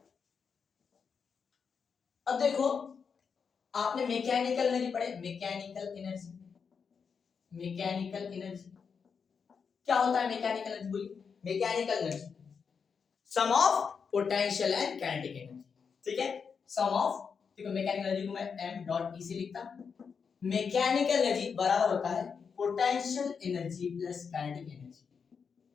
अब देखो आपने मैकेनिकल एनर्जी पढ़े, मैकेनिकल एनर्जी, मैकेनिकल एनर्जी क्या होता है? मैकेनिकल एनर्जी बोलिए, mechanical energy sum of potential and kinetic energy, ठीक है। सम ऑफ, देखो मैकेनिकल एनर्जी को मैं m डॉट e से लिखता हूं। मैकेनिकल एनर्जी बराबर होता है potential energy plus kinetic energy.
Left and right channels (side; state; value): right; quieter; 6.1 dB